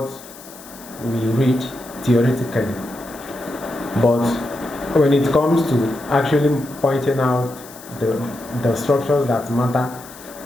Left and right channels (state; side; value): noise; left; hiss, 18 dB below the sound